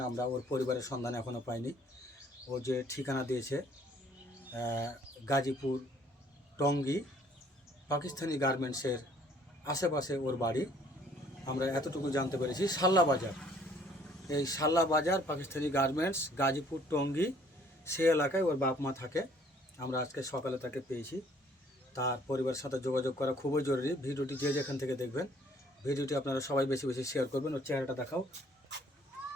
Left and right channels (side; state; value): both; normal; correlation 0.60